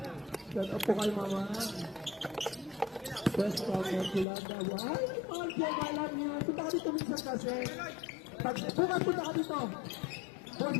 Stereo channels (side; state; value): right; drops out; at 4.2 s